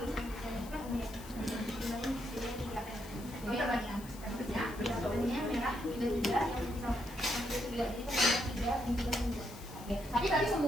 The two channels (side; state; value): left; noise; hiss, 17 dB below the sound